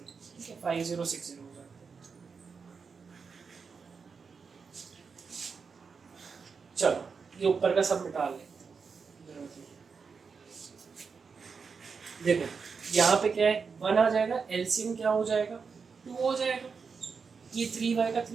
ठीक है, 5060 हो जाएगा। चलो ये ऊपर का सब मिटा लेते हैं। देखो यहाँ पे क्या है, 1 आ जाएगा, एलसीएम क्या हो जाएगा 2 हो जाएगा, ये 3y का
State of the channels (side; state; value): left; quieter; 5.4 dB